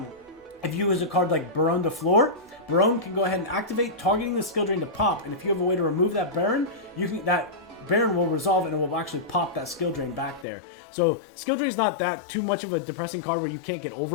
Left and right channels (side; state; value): right; drops out; at 10.5 s